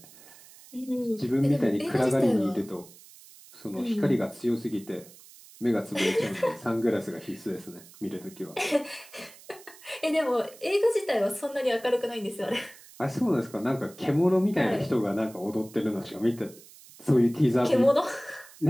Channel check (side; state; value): right; noise; hiss, 21 dB below the sound